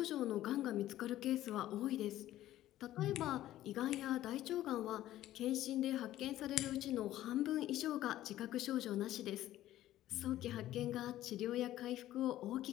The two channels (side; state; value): right; quieter; 13.9 dB